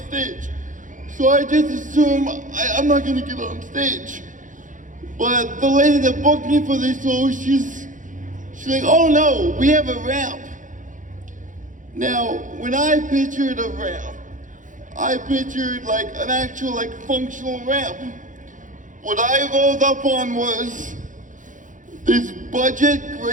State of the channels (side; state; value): left; late; 0.37 ms